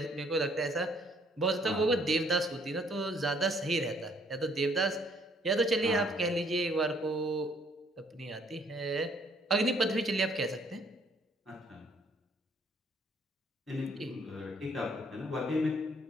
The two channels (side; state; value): both; normal; correlation 0.64